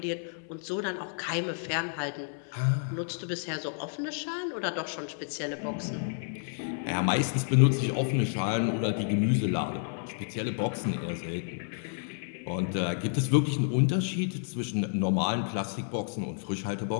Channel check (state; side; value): silent; right; 58 dB below the other